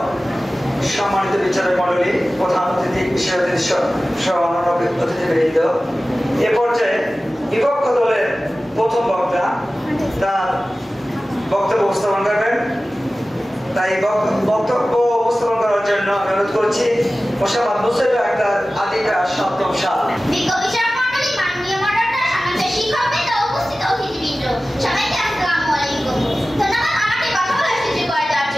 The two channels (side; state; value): both; normal; correlation 0.96